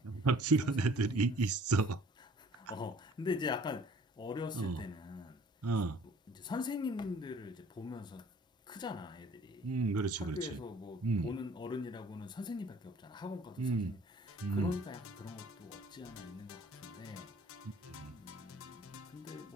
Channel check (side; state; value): both; normal; correlation 0.53